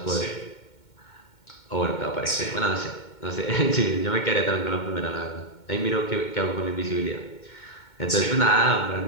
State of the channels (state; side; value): late; right; 2.2 ms